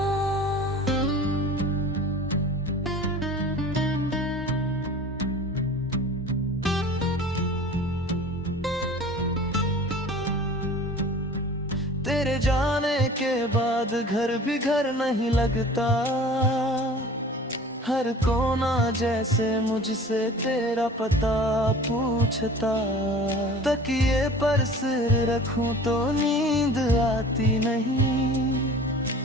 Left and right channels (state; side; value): normal; both; correlation 0.43